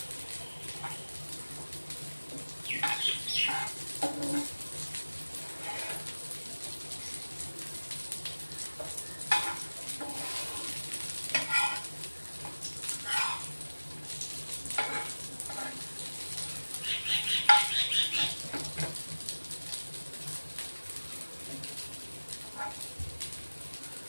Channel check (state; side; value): inverted; both; correlation -1.00